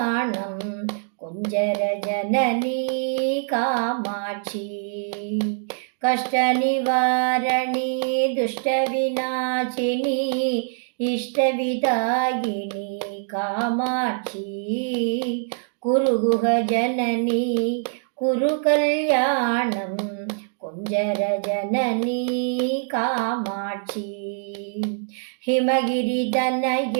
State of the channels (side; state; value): left; silent; digital silence